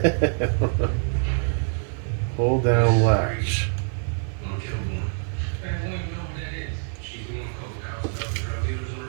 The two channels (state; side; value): silent; left; 60 dB below the other